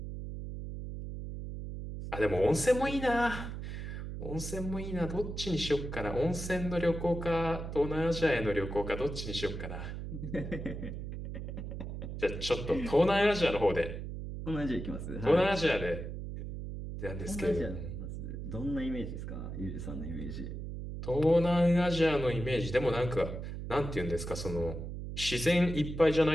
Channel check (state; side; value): noise; right; hum, 7 dB below the sound